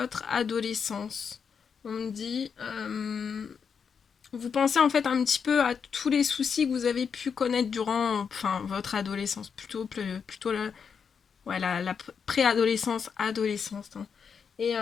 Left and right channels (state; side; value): quieter; right; 6.5 dB